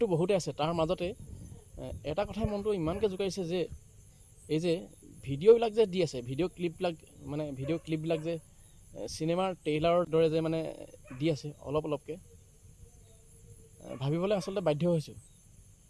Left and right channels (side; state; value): both; identical; correlation 1.00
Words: বহুতে আছে, তাৰ মাজতে এটা কথাই মনটো ইমানকৈ জোকাৰিছে যে এই যে ভিডিঅ'বিলাক যে দি আছে, ভিডিঅ' ক্লিপবিলাক যে চিনেমাৰ ট্ৰেইলাৰৰ দৰে যে মানে দি আছে অলপ অলপকৈ, ভাবিবলৈ আচলতে বাধ্য হৈছোঁ।